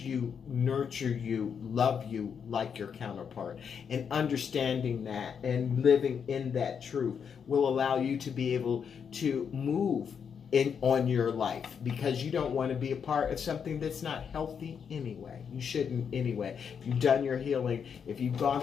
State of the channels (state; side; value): quieter; right; 7.0 dB